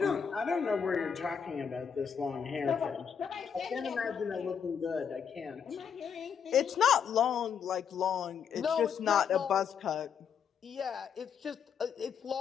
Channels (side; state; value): right; quieter; 7.3 dB